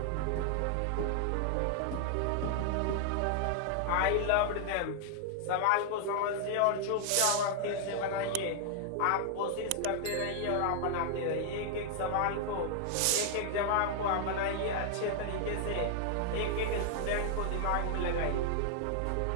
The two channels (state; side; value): different; both; correlation 0.00